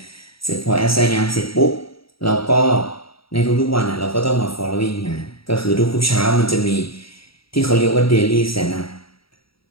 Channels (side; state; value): right; late; 0.75 ms